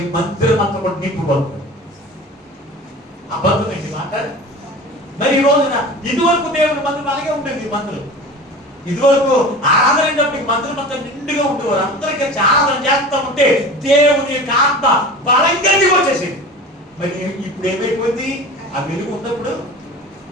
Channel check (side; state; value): both; normal; correlation 0.36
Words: మందిరం అంతా కూడా నింపుబడుతుంది. అబద్ధం ఏంటి మాట? మరి ఈ రోజున ఇదివరకు దేవుని మందిరం అలాగే ఉండేది. ఈ మందిరం ఇదివరకు ఆరాధన అయినప్పటికీ మందిరం అంతా నిండుగా ఉండేవారు. అందరూ కలిసి ఆరాధన చేస్తూ ఉంటే దేవుని యొక్క ఆత్మ బలంగా వచ్చేసింది. మరి ఇప్పుడు ఏమైపోయింది? ఆ వెలుగు ఉన్నప్పుడు